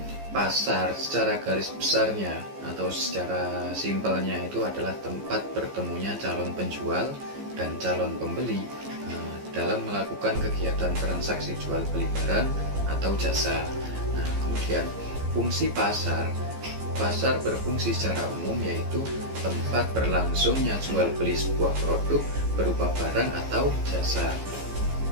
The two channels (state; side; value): late; left; 15 ms